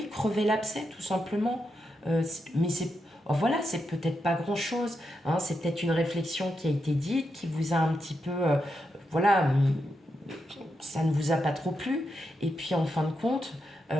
crever l'abcès, tout simplement. Mais voilà, c'est peut-être pas grand-chose, hein, c'est peut-être une réflexion qui a été dite, qui vous a un petit peu, voilà, ça ne vous a pas trop plu, et puis en fin de compte,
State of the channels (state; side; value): normal; both; correlation 0.85